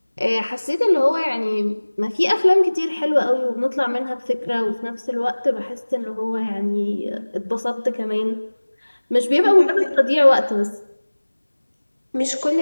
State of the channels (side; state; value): both; inverted; correlation -1.00